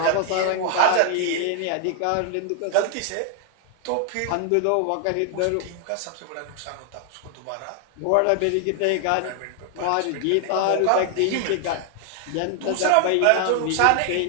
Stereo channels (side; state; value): both; different; correlation 0.00